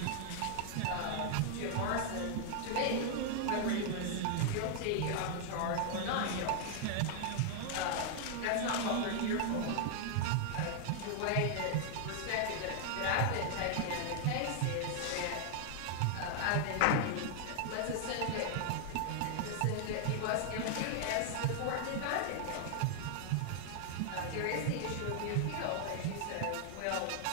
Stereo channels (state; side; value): different; both; correlation 0.00